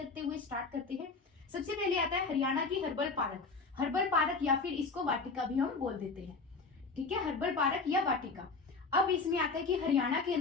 हुए स्टार्ट करते हैं। सबसे पहले आता है हरियाणा की हर्बल पार्क। हर्बल पार्क या फिर इसको वाटिका भी हम बोल देते हैं, ठीक है, हर्बल पार्क या वाटिका। अब इसमें आता है कि हरियाणा के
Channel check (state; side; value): quieter; right; 4.2 dB